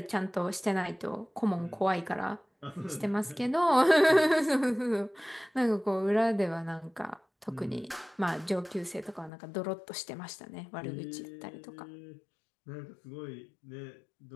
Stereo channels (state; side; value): drops out; right; at 9.3 s